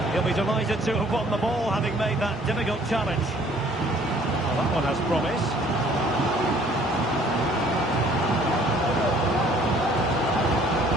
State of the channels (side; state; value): both; normal; correlation 0.57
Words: He'll be delighted to have won the ball, having made that difficult challenge. That one has promise.